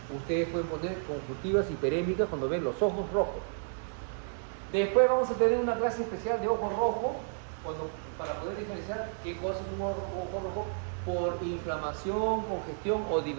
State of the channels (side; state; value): left; silent; digital silence